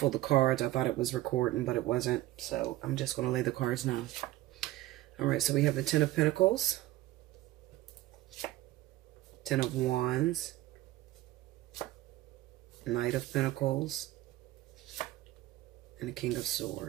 the cards. I thought it was recording, but it wasn't. So I'm just going to lay the cards now. All right, so we have the Ten of Pentacles, Ten of Wands, Knight of Pentacles, and the King of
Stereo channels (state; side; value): quieter; left; 16.2 dB